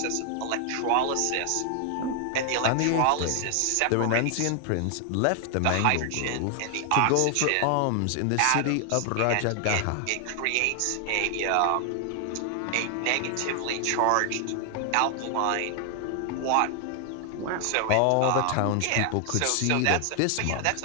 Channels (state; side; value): different; both; correlation 0.00